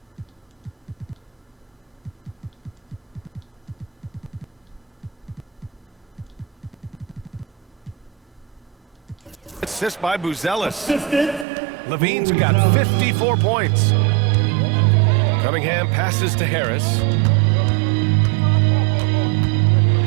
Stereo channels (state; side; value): drops out; left; at 11.5 s